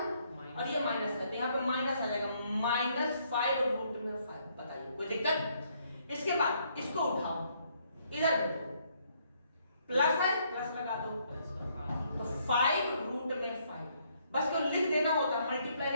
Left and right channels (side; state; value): both; inverted; correlation -0.70